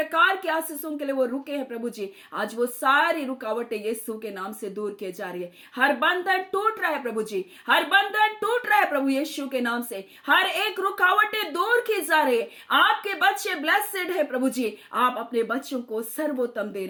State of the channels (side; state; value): both; identical; correlation 1.00